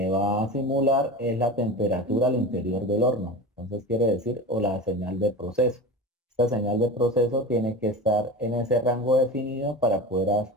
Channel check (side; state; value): both; normal; correlation 0.30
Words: va a simular es la temperatura al interior del horno. Entonces quiere decir, o la señal de proceso. Esta señal de proceso tiene que estar en ese rango definido para poder